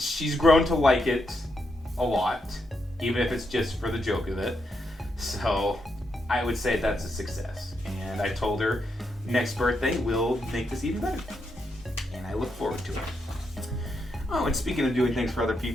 grown to like it a lot, even if it's just for the joke of it. So I would say that's a success. And I told her next birthday we'll make this even better. And I look forward to it. Oh, and speaking of doing things for other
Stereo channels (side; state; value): both; normal; correlation 0.82